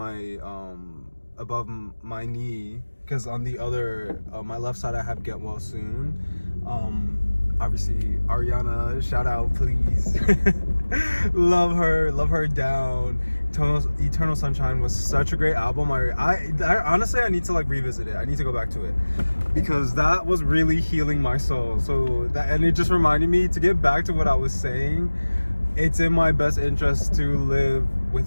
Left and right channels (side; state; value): both; inverted; correlation -1.00